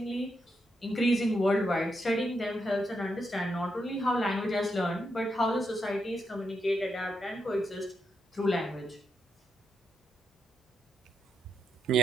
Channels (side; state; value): both; normal; correlation 0.81